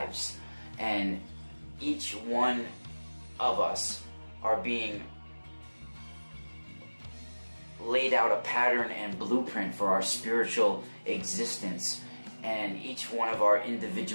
And each one of us are being laid out a pattern and blueprint for our spiritual existence. And each one of our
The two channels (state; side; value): inverted; both; correlation -1.00